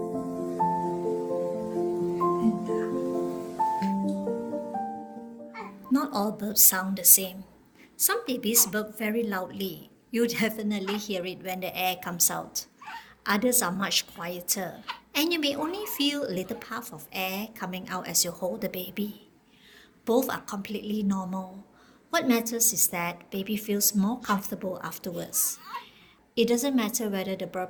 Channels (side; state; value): both; identical; correlation 1.00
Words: And Not all burps sound the same. Some babies burp very loudly. You definitely hear it when the air comes out. Others are much quieter, and you may only feel a little puff of air coming out as you hold the baby. Both are completely normal. What matters is that baby feels more comfortable afterwards. It doesn't matter whether the